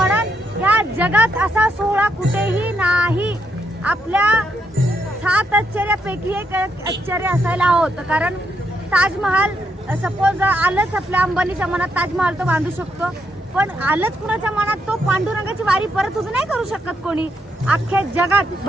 या जगात असा सोहळा कुठेही नाही। आपल्या 7 आश्चर्यापैकी एक आश्चर्य असायला हवं, कारण ताजमहाल सपोज आलंच आपल्या अंबानीच्या मनात ताजमहाल तो बांधू शकतो, पण आलंच कुणाच्या मनात तो पांडुरंगाची वारी परत उभी नाही करू शकत कोणी। अख्ख्या जगात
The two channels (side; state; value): both; normal; correlation 0.78